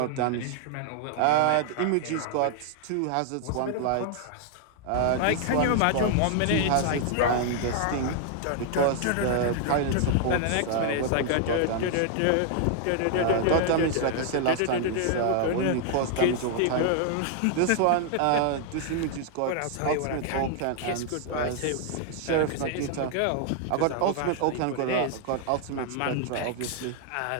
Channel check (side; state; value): both; different; correlation 0.00